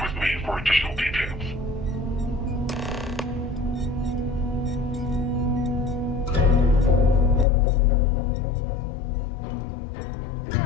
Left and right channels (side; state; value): right; drops out; at 7.5 s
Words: with me for additional details.